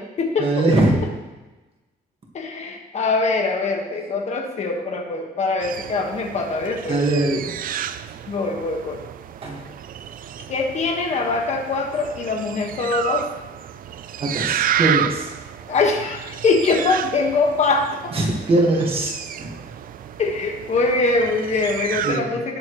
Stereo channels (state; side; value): normal; both; correlation 0.40